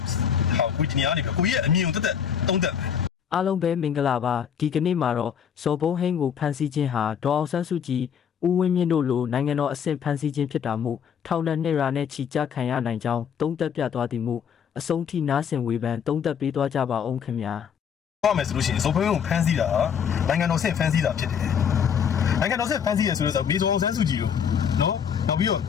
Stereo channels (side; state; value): right; quieter; 7.8 dB